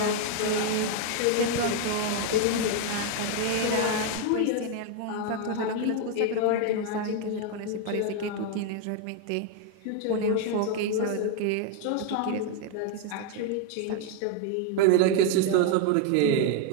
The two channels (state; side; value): different; both; correlation 0.01